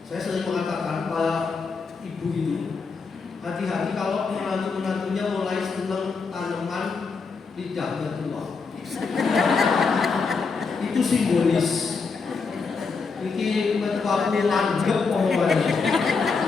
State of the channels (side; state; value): right; quieter; 4.8 dB